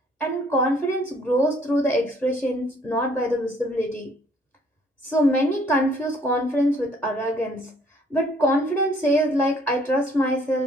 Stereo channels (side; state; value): both; normal; correlation 0.62